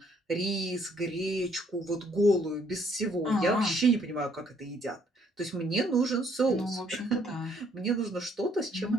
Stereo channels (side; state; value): both; normal; correlation 0.66